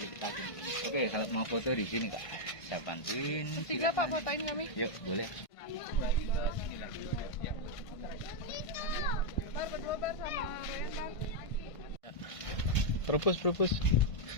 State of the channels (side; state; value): right; late; 1.5 ms